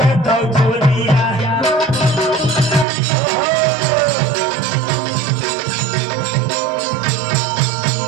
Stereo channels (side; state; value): left; drops out; at 2.9 s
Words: दे तो होलिया